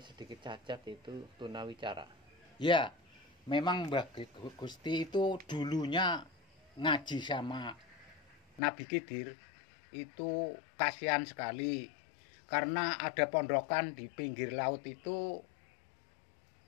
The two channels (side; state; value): right; drops out; at 8.6 s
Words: sedikit cacat, itu tunawicara. Ya, memang Mbah Gusti itu dulunya ngaji sama Nabi Khidir, itu kasihan sekali karena ada pondokan di pinggir laut itu